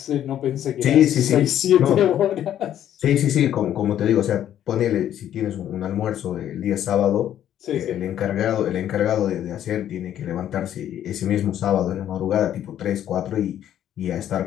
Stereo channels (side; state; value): right; quieter; 11.0 dB